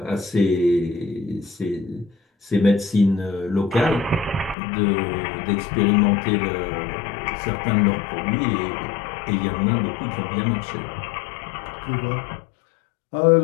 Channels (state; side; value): drops out; right; at 4.5 s